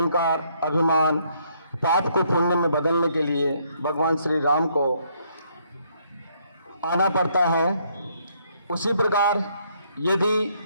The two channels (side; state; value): both; inverted; correlation -0.70